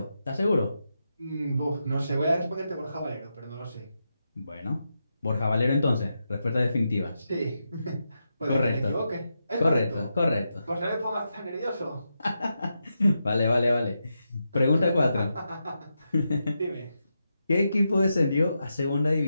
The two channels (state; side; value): inverted; both; correlation -0.87